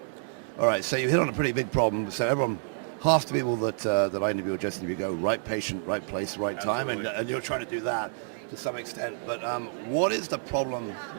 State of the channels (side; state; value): left; silent; digital silence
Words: All right, so you hit on a pretty big problem. So everyone, half the people that I interview or just interview go, right patient, right place, right time, and you're trying to do that to some extent. But what is the problem,